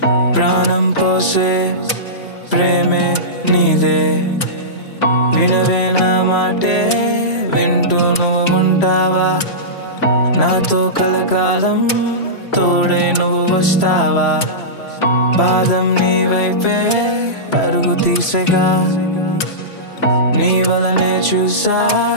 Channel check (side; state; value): right; late; 3.0 ms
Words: ప్రాణం పోసే ప్రేమే నీదే. వినవే నా మాటే వింటూ నువ్వు ఉంటావా, నాతో కలకాలం తోడై నువ్వు వస్తావా. పాదం నీ వైపే పరుగు తీసగా, నీ వలనే చూసా